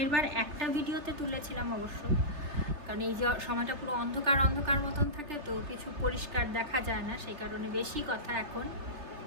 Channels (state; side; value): late; left; 3.3 ms